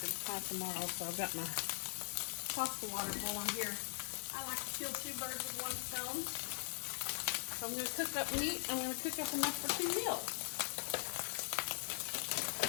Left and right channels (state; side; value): silent; right; 50 dB below the other